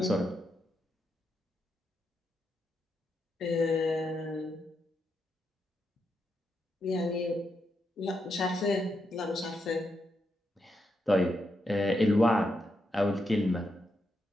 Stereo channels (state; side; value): normal; both; correlation 0.83